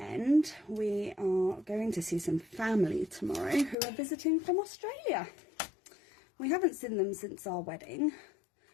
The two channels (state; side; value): drops out; right; at 3.8 s